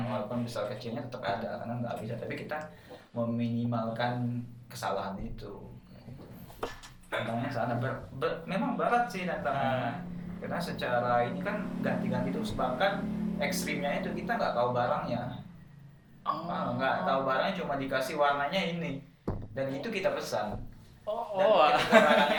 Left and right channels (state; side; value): identical; both; correlation 1.00